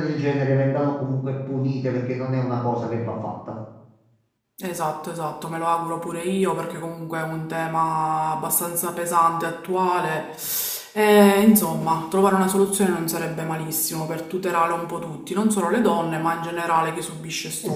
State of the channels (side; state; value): both; identical; correlation 1.00